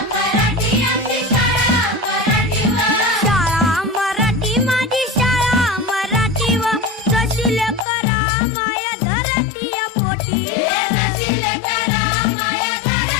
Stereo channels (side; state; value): right; drops out; at 7.9 s